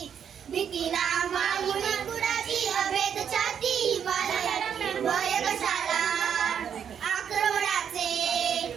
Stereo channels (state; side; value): quieter; left; 8.1 dB